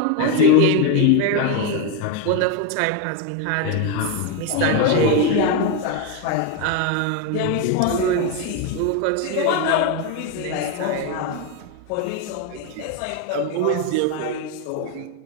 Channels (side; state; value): both; different; correlation 0.02